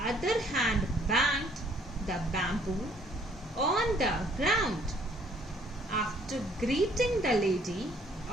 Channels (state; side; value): normal; both; correlation 0.62